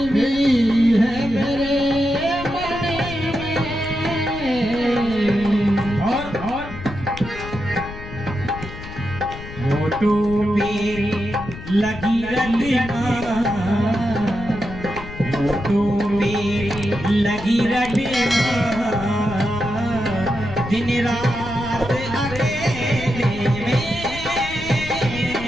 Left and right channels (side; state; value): left; noise; rumble, 12 dB below the sound